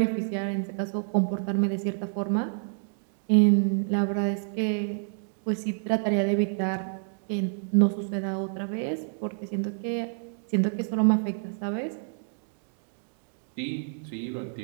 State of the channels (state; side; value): silent; left; digital silence